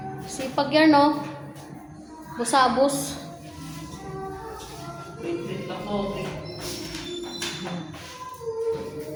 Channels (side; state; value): both; identical; correlation 1.00